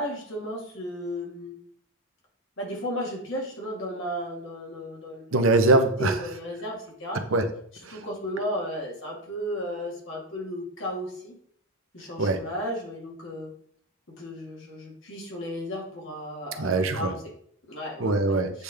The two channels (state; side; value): normal; both; correlation 0.12